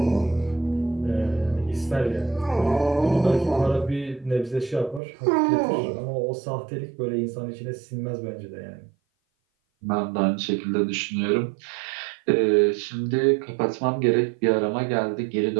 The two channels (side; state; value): left; drops out; at 5.0 s